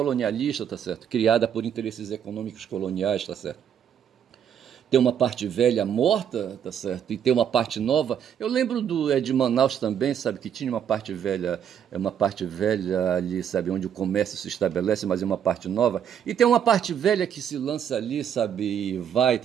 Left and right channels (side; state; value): left; quieter; 8.8 dB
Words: tá certo? Criada por interesses econômicos coloniais, tá certo? Tem uma parte velha morta, tá certo? E tem uma parte nova. Eu lembro de Manaus também, sabe, que tinha uma parte velha ali, sabe, onde o comércio se estabelece, mas é uma parte nova. E tem uma parte velha que se lança ali, sabe, e vai,